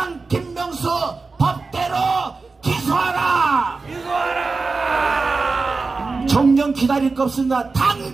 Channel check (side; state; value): left; quieter; 4.1 dB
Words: 김명수 법대로 기소하라. 정령 기다릴 거 없습니다.